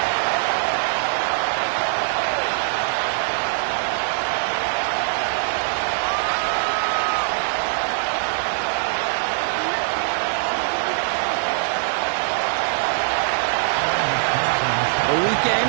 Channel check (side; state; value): left; silent; digital silence